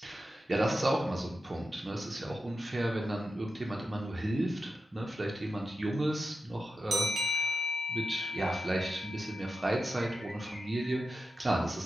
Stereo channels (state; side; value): normal; both; correlation 0.91